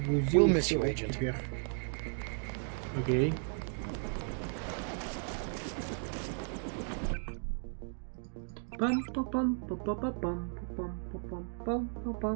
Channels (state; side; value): silent; left; 54 dB below the other